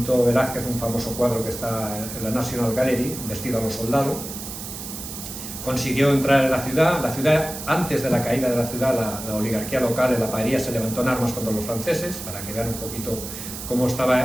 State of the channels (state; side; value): noise; right; hiss, 9 dB below the sound